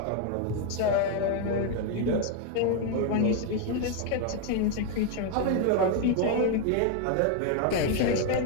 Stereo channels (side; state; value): both; different; correlation 0.01